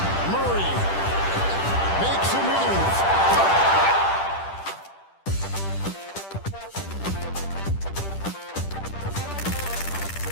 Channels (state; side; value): late; right; 10 ms